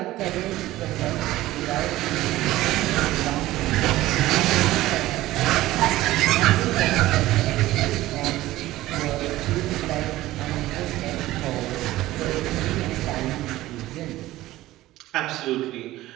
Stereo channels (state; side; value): quieter; left; 16.4 dB